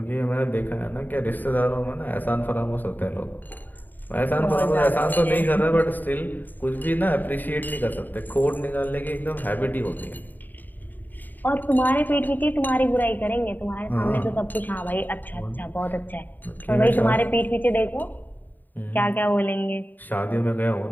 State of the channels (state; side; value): late; right; 0.088 ms